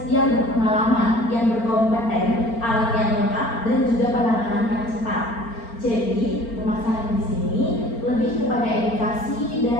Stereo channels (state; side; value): late; right; 4.4 ms